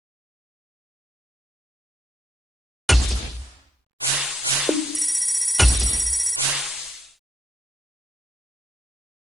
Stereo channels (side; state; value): both; normal; correlation 0.79